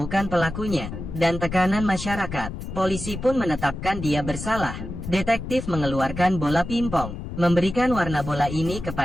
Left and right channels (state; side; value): noise; left; rumble, 8 dB below the sound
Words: pelakunya, dan tekanan masyarakat. Polisi pun menetapkan dia bersalah. Detektif mengeluarkan bola pimpong, memberikan warna bola ini